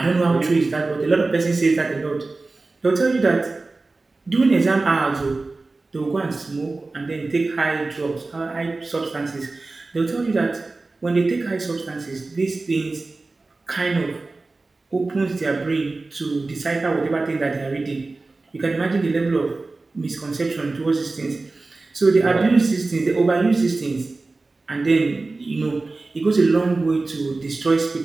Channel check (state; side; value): quieter; left; 3.5 dB